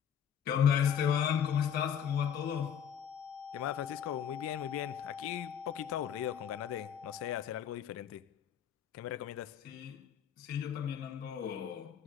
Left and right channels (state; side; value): quieter; right; 8.7 dB